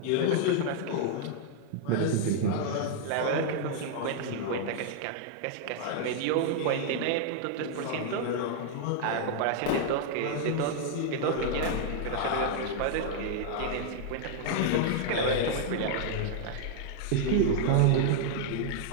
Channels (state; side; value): different; both; correlation -0.01